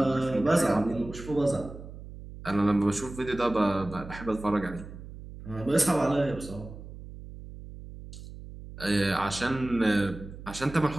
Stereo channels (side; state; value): right; noise; hum, 14 dB below the sound